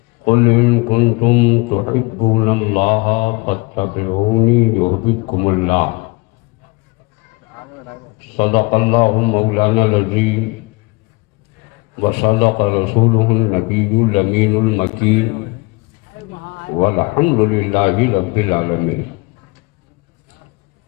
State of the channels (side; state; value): right; quieter; 26.7 dB